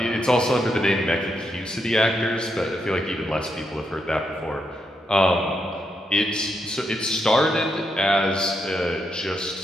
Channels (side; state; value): both; normal; correlation 0.81